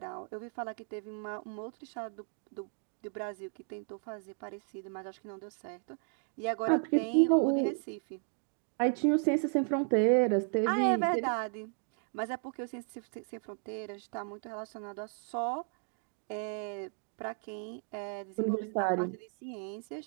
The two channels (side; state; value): left; silent; 55 dB below the other